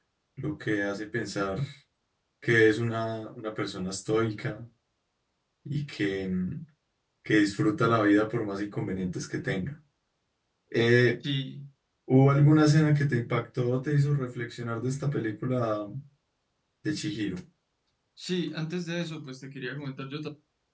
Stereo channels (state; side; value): identical; both; correlation 1.00